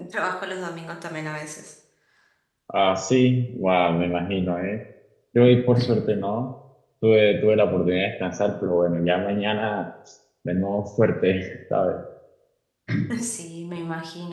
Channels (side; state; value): both; identical; correlation 1.00